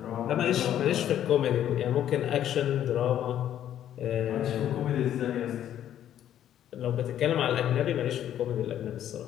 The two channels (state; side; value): quieter; right; 10.9 dB